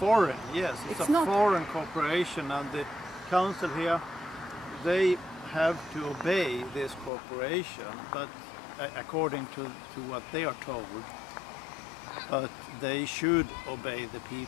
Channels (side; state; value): right; drops out; at 7.1 s